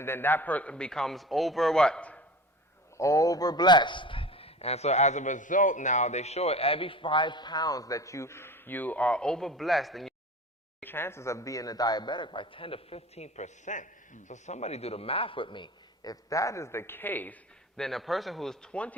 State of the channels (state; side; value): normal; both; correlation 0.36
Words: then that person becomes over-blessed. And so as a result now, they show it every 5 pounds that you are over-blessed, and your chances of being a diabetic by 10 to 15%. So somebody do the math with me. If that is the case, then a person who is